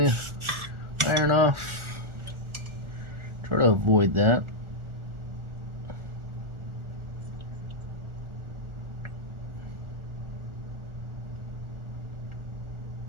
iron off. Try to avoid that.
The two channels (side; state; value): left; late; 1.4 ms